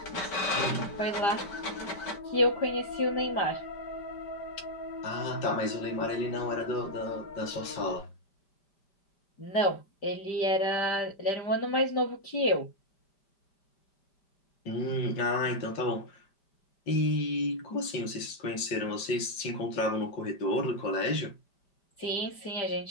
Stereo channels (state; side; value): late; right; 5.1 ms